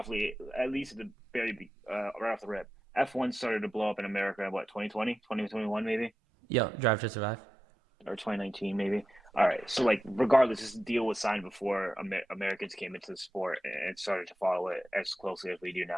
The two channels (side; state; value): both; normal; correlation 0.90